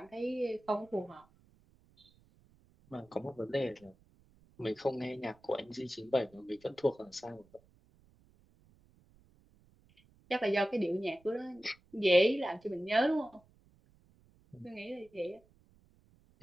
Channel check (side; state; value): right; noise; rumble, 30 dB below the sound